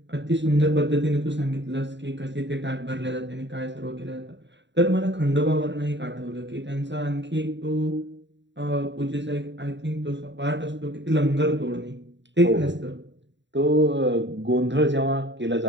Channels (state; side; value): late; left; 0.52 ms